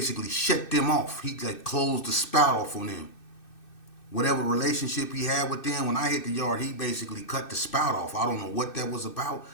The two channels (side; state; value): right; late; 2.6 ms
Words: shut them off. He like closed the spout off on them. Whatever relationship he had with them, when I hit the yard, he basically cut the spout off. I don't know what that was about,